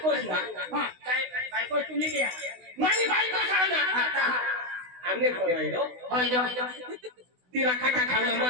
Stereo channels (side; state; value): left; late; 16 ms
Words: हां काय बायको तुम्ही घ्या माझी बायको सांगा आमने करायलो होय तिला खाता खायला